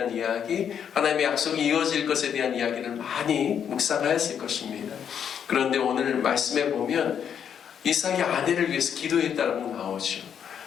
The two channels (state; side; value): quieter; right; 8.2 dB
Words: 이야기, 하나님의 약속이 이어질 것에 대한 이야기를 많이 묵상하였을 것입니다. 그런데 오늘 말씀에 보면 이삭이 아내를 위해서 기도했다고 나오죠.